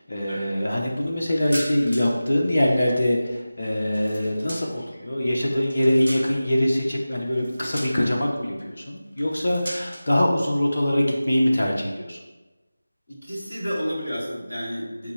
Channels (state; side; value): inverted; both; correlation -0.96